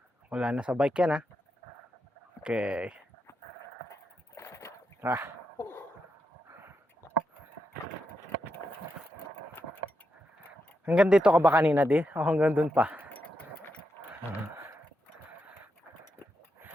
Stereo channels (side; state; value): both; normal; correlation 0.84